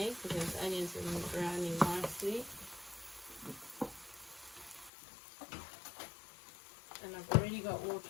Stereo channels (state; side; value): drops out; right; at 4.9 s